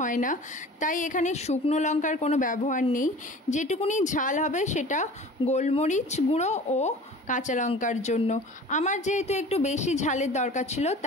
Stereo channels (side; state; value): both; normal; correlation 0.41